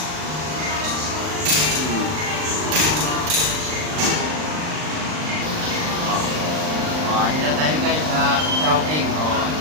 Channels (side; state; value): left; late; 39 ms